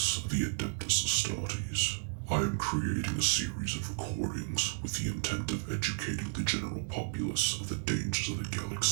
of the Adeptus Astartes. I am creating a series of recordings with the intent of educating the general populace of the dangers of the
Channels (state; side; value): silent; left; digital silence